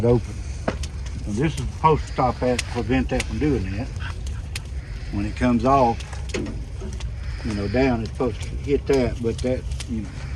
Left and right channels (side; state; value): both; identical; correlation 1.00